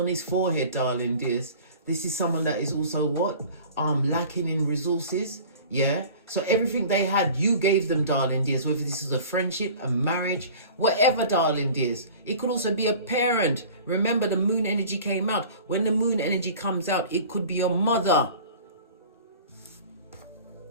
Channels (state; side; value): inverted; both; correlation -0.43